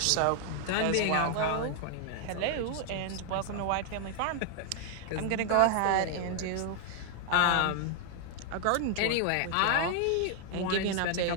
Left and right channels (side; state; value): both; different; correlation 0.00